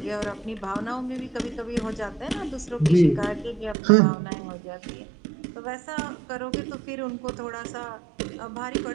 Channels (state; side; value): drops out; left; at 3.8 s